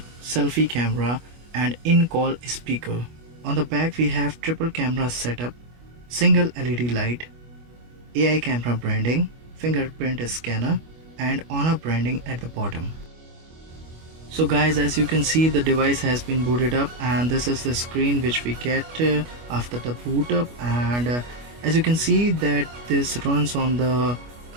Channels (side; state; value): left; late; 25 ms